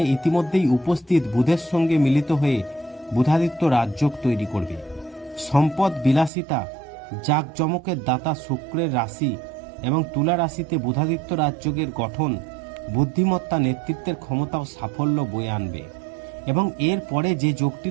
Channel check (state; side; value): drops out; left; at 6.3 s